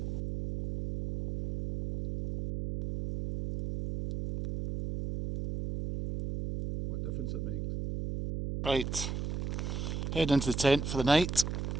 What difference it makes. Right, head into the tent for the night,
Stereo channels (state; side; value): noise; right; hum, 3 dB below the sound